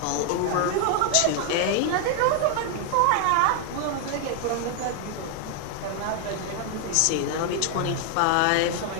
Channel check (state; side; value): different; both; correlation 0.00